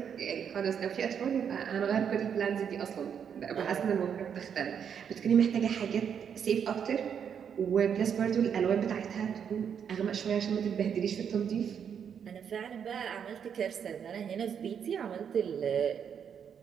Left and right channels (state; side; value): quieter; left; 7.8 dB